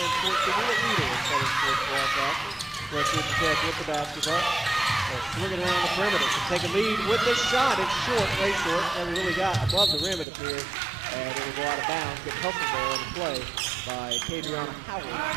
Sports TV, the leader in Southern Sports broadcasting. West Georgia Tech with the basketball. Swinging around the perimeter to take a lead with this shot. It's short, way short. Never really got above the rim, it appears. And it will go out of bounds. Get hustled there on the play by Kadriana Howard.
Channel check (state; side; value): drops out; left; at 10.2 s